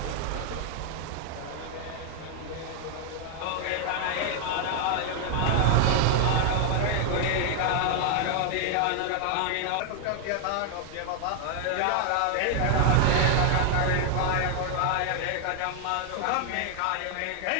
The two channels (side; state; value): both; different; correlation 0.00